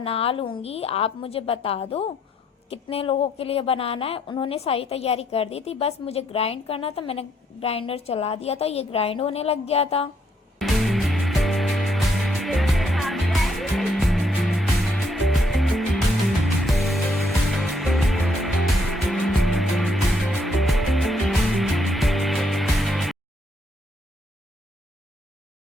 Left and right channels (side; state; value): both; normal; correlation 0.71